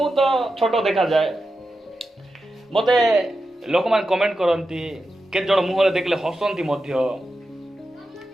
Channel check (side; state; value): both; normal; correlation 0.90